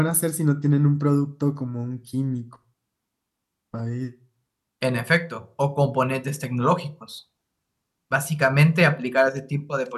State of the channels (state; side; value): identical; both; correlation 1.00